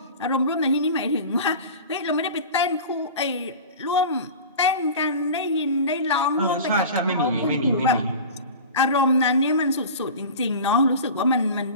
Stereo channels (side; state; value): both; inverted; correlation -0.35